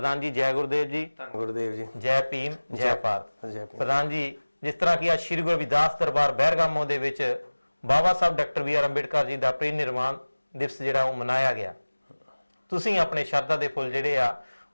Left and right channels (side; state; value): both; inverted; correlation -1.00